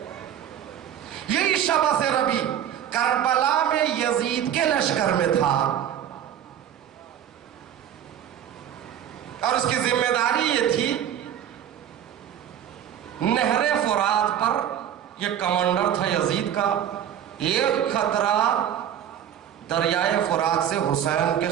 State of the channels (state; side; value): quieter; left; 10.0 dB